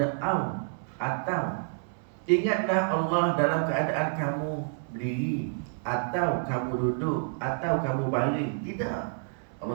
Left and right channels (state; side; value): silent; left; 59 dB below the other